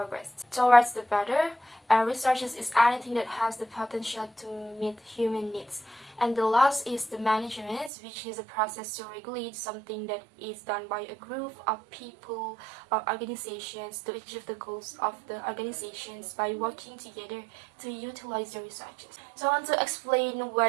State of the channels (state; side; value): drops out; left; at 7.9 s